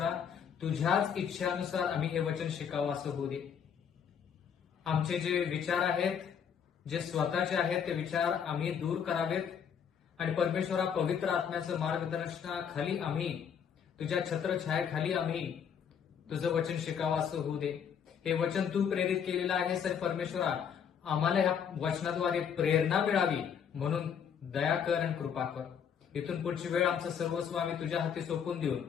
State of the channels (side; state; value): right; quieter; 7.7 dB